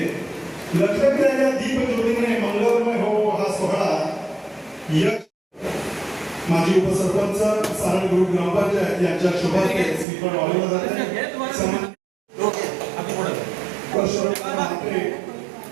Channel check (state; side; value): drops out; left; at 10.1 s